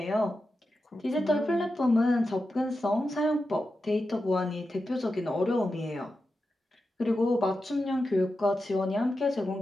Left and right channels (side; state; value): both; normal; correlation 0.90